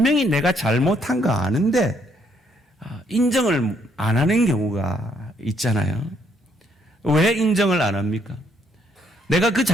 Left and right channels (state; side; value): normal; both; correlation 0.70